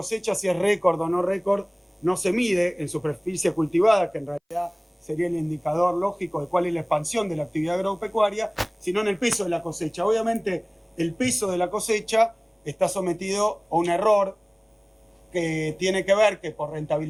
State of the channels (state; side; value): identical; both; correlation 1.00